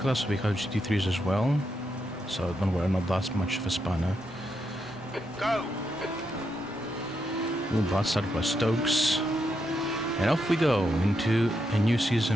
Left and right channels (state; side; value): normal; both; correlation 0.82